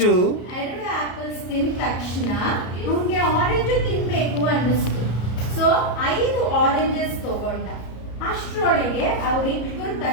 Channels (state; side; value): late; right; 34 ms